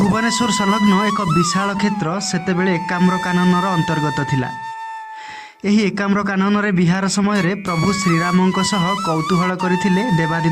संलग्न एक विशाल क्षेत्र सेतेबेले एकाम्र काननर अंतर्गत थिला। एही एकाम्र कानन रे विहार समय रे प्रभु श्रीरामंक सह कौतूहल करथिले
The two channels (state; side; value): identical; both; correlation 1.00